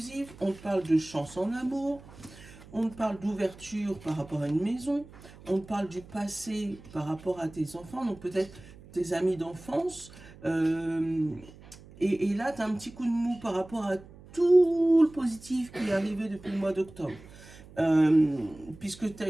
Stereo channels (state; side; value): noise; right; hum, 20 dB below the sound